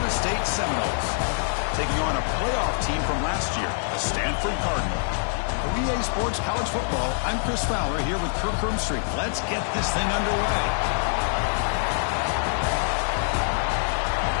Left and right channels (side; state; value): right; silent; 62 dB below the other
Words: State Seminoles, taking on a playoff team from last year, the Stanford Cardinals. For EA Sports College Football, I'm Chris Fowler here with Kirk Hermstreet. Let's get this thing underway.